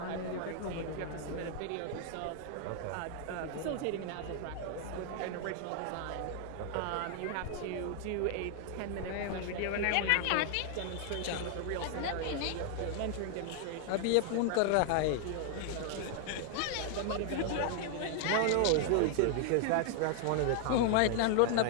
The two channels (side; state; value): both; different; correlation 0.00